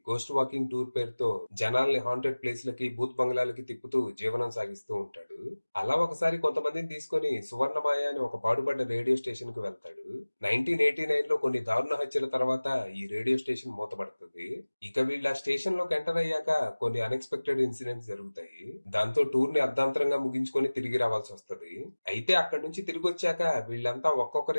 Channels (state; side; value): inverted; both; correlation -1.00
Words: గోస్ట్ వాకింగ్ టూర్ పేరుతో జనాల్ని హాంటెడ్ ప్లేస్ లకి, భూత్ బంగ్లాలకి తిప్పుతూ జీవనం సాగిస్తూ ఉంటాడు. అలా ఒకసారి కొంతమందిని తీసుకొని సువర్ణమాయ అని ఒక పాడుపడ్డ రేడియో స్టేషన్ కు వెళ్తాడు. 1989 లో కొన్ని దారుణ హత్యల తర్వాత ఈ రేడియో స్టేషన్ మూతపడుతుంది. ఇక వీళ్ళు ఆ స్టేషన్ లోకి ఎంటర్ అయ్యాక కొన్ని అన్ఎక్స్పెక్టెడ్ ఇన్సిడెంట్స్ జరుగుతాయి. దాంతో టూర్ ని అర్ధాంతరంగా ముగించుకొని తిరిగి రావాల్సి వస్తుంది. అయితే అక్కడి నుంచి తిరిగి వచ్చాక వీళ్ళంతా